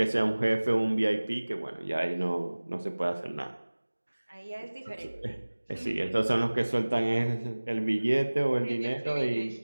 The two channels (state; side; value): inverted; both; correlation -1.00